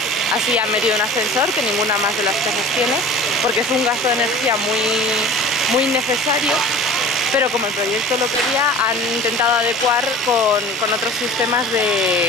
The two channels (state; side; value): normal; both; correlation 0.41